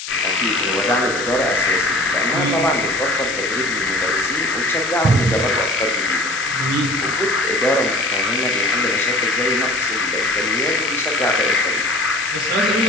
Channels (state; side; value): noise; left; hiss, 9 dB below the sound